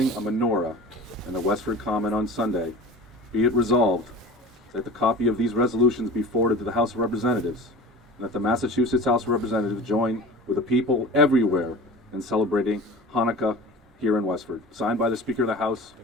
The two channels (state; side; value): normal; both; correlation 0.37